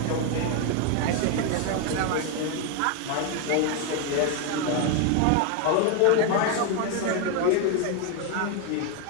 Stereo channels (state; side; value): different; both; correlation 0.01